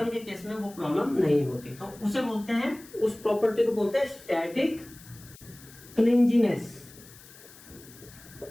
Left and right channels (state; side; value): noise; left; hiss, 21 dB below the sound